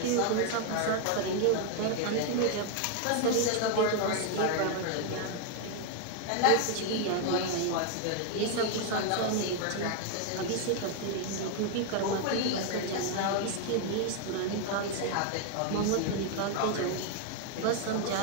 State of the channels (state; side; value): different; both; correlation 0.00